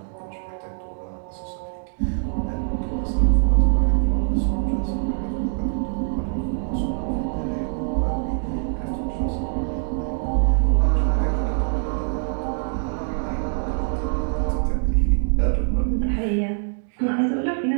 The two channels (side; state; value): left; silent; digital silence